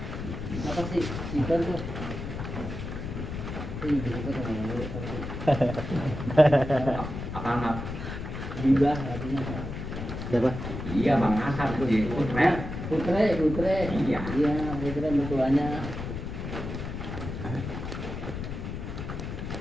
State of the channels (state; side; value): noise; left; rumble, 6 dB below the sound